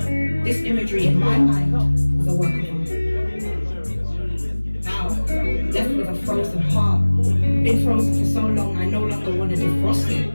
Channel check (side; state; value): both; inverted; correlation -1.00